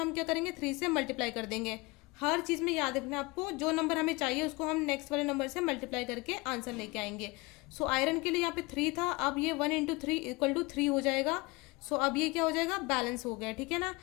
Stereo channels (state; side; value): quieter; right; 24.7 dB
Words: क्या करेंगे, 3 से मल्टीप्लाई कर देंगे। हर चीज़ में याद रखना है आपको, जो नंबर हमें चाहिए उसको हम नेक्स्ट वाले नंबर से मल्टीप्लाई करके आंसर लेके आएंगे। सो आयरन के लिए यहाँ पे 3 था, अब ये 1 × 3 = 3 हो जाएगा। सो अब ये क्या हो जाएगा, बैलेंस हो गया, ठीक है ना।